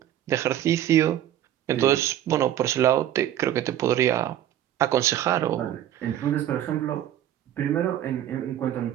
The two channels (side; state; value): left; quieter; 11.7 dB